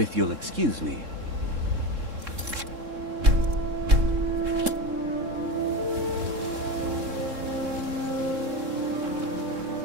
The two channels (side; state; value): left; late; 3.7 ms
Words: you'll excuse me.